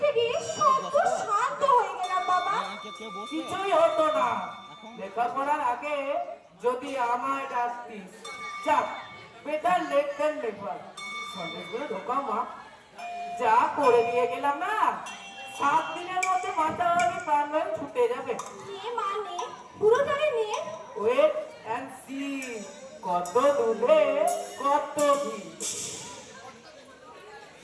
গিয়ে সত্য শান্ত হয়ে গেলাম বাবা। কিছুই হতো না। লেখাপড়ার আগে যদি আমায় ডাকতিস। যাক, বেটার লেট দেন নেভার। সন্দেশগুলো ঢোকা মা, যা করে দিয়ে গেলাম না, 7 দিনের মধ্যে মাথা ভাবে প্রাণ ভাবে ছুটে যাবে। নে মানে পুরোটারে নে। ওয়েট অ্যান্ড সি, কত দুধে কত ঘি।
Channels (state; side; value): identical; both; correlation 1.00